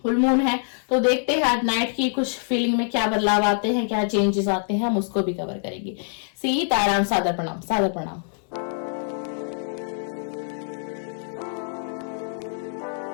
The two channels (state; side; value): silent; right; 62 dB below the other